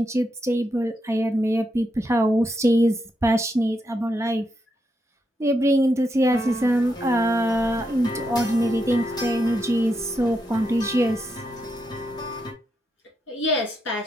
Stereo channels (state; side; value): normal; both; correlation 0.82